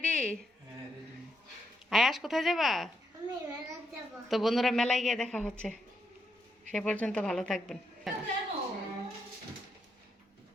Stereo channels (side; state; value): both; normal; correlation 0.80